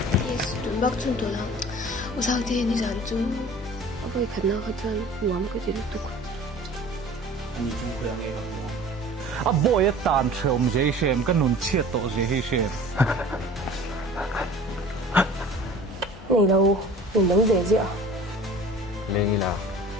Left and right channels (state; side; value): normal; both; correlation 0.43